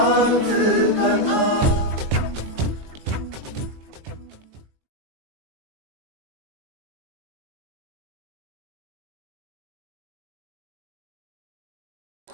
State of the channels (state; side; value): late; left; 20 ms